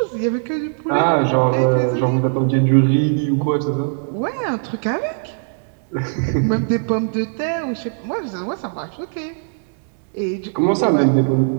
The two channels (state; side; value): silent; left; digital silence